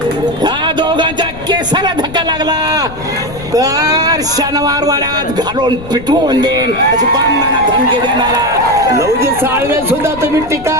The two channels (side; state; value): left; noise; rumble, 14 dB below the sound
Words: ह्या दोघांच्या केसाला धक्का लागला तर शनिवार वाड्यात घालून पिटवून देईन अशी बामणांना धमकी देणारा लहुजी साळवे सुद्धा तुम्ही